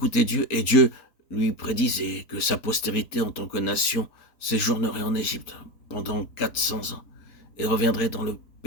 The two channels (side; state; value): right; late; 4.3 ms